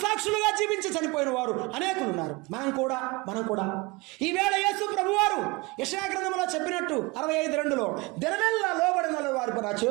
జీవించి చనిపోయిన వారు అనేకులు ఉన్నారు. మనం కూడా ఈవేళ యేసు ప్రభువారు యెషయా గ్రంథంలో చెప్పినట్టు 65:2 దినమెల్లా లోబడిన వారి నా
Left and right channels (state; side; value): quieter; left; 25.0 dB